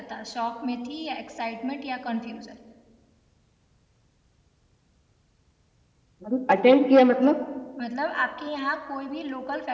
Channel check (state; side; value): identical; both; correlation 1.00